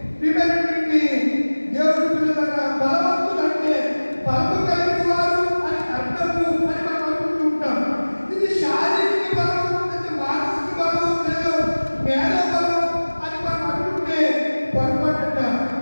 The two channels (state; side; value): inverted; both; correlation -1.00